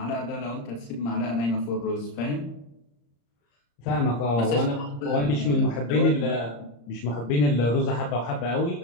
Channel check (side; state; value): right; late; 34 ms